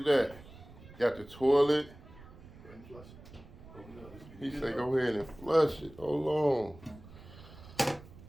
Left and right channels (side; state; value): right; noise; rumble, 19 dB below the sound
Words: that. Got the toilet. He said go ahead and flush it. Hold on.